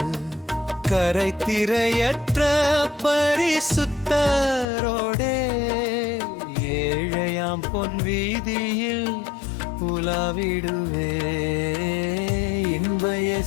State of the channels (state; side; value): drops out; right; at 4.7 s